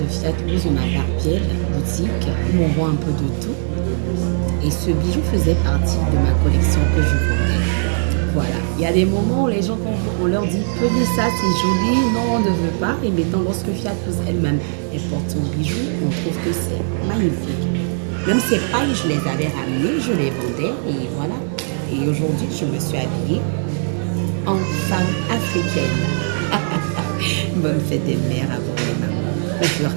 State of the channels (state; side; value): silent; left; digital silence